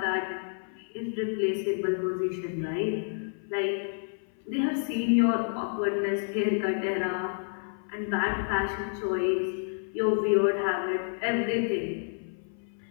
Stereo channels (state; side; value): silent; right; 57 dB below the other